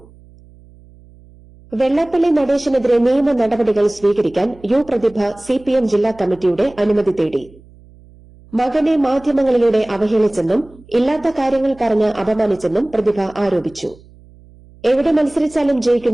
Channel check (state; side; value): noise; right; hum, 25 dB below the sound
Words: വെള്ളാപ്പള്ളി നടേശനെതിരെ നിയമ നടപടികൾ സ്വീകരിക്കാൻ യു പ്രതിഭ CPM ജില്ലാ കമ്മിറ്റിയുടെ അനുമതി തേടി. മകനെ മാധ്യമങ്ങളിലൂടെ അവഹേളിച്ചെന്നും ഇല്ലാത്ത കാര്യങ്ങൾ പറഞ്ഞ് അപമാനിച്ചെന്നും പ്രതിഭ ആരോപിച്ചു. എവിടെ മത്സരിച്ചാലും